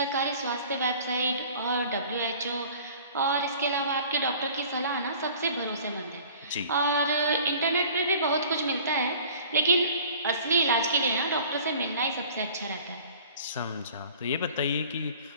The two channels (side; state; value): both; inverted; correlation -0.47